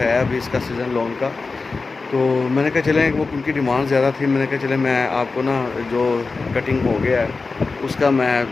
अभी इसका सीज़न लॉन्ग का। तो मैंने कहा चलें, वो उनकी डिमांड ज़्यादा थी, मैंने कहा चलें मैं आपको ना जो कटिंग हो गया है उसका मैं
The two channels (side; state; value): right; quieter; 4.1 dB